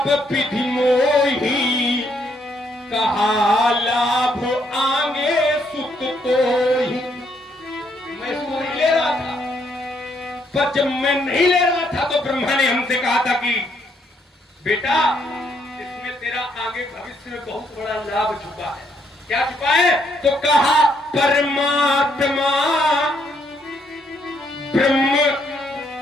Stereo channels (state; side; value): normal; both; correlation 0.72